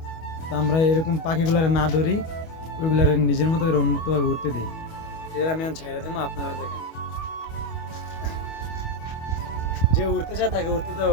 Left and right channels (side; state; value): right; late; 25 ms